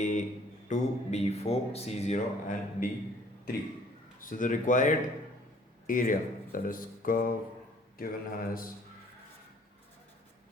2, B 4, C 0 and D 3. So the required area, that is curve given as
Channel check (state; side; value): normal; both; correlation 0.57